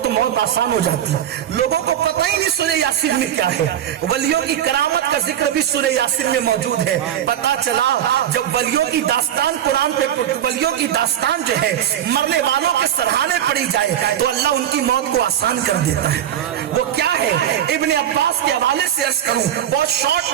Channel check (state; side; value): quieter; left; 10.4 dB